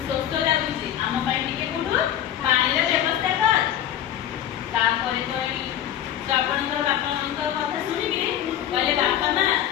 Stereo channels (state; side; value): quieter; right; 11.0 dB